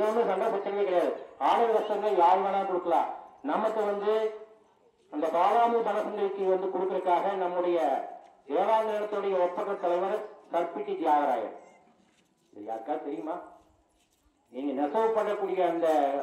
ஒன்றும் சண்டை பிரச்சனையே கிடையாது. ஆடல் கஷ்டங்கள் யார் வேணாலும் கொடுக்கலாம். நமக்கு வந்து அந்த பாலாமி பனசங்களுக்கு வந்து கொடுக்கறதுக்காக நம்முடைய தேவாலயத்துடைய ஒப்பற்ற தலைவர் கற்பிட்டி தியாகராயர். யாருக்கா தெரியுமா? நீங்க நெசவு பண்ணக்கூடிய அந்த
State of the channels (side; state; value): both; identical; correlation 1.00